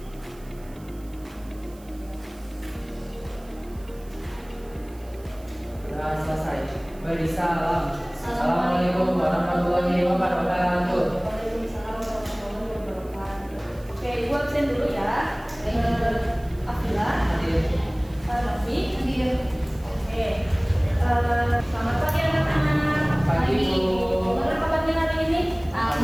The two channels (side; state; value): right; noise; hiss, 26 dB below the sound